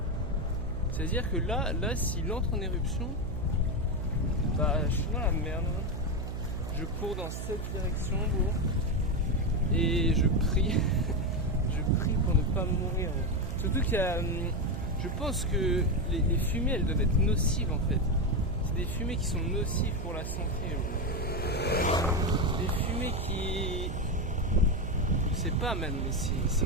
C'est-à-dire que là, s'il entre en éruption, bah je suis dans la merde. Je cours dans cette direction, bro. Et je prie. Je prie pour ne pas mourir. Bro. Surtout qu'il y a... Je pense que les fumées, elles doivent être nocives, en fait. C'est des fumées qui sont nocives pour la santé, bro. Des fumées qui... Je sais pas, man, mais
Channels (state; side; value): noise; right; hum, 5 dB below the sound